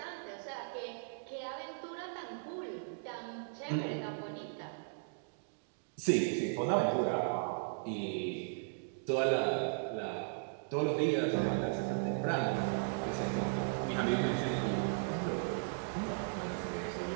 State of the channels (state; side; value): silent; left; digital silence